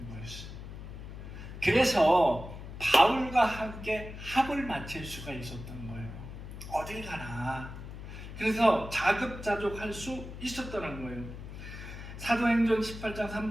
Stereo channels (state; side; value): noise; left; hum, 11 dB below the sound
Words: 거였어요. 그래서 바울과 함께 합을 맞출 수가 있었던 거예요. 어딜 가나. 그래서 자급자족할 수 있었다는 거예요. 사도행전 18장